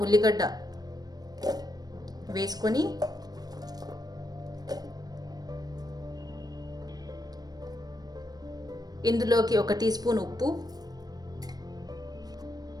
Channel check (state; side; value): late; left; 0.19 ms